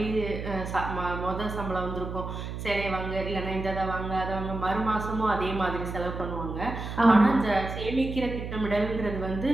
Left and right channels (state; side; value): noise; right; hum, 6 dB below the sound